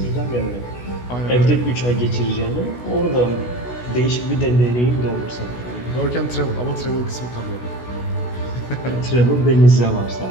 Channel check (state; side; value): late; right; 16 ms